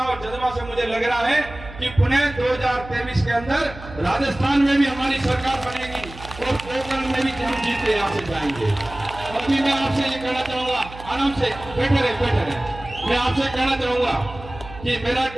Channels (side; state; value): right; noise; hum, 15 dB below the sound